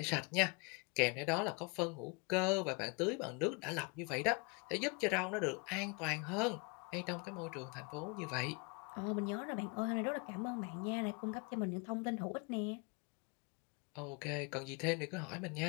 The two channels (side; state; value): right; quieter; 30.5 dB